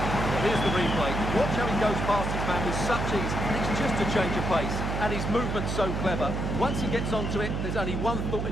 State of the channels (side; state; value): right; noise; hum, 1 dB below the sound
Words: Here's the replay. Watch how he goes past his man with such ease. It's just a change of pace. And his movement's so clever. Once he gets onto it, there's only one thought in